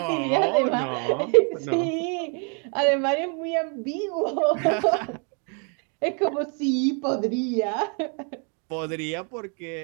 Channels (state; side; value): quieter; left; 39.2 dB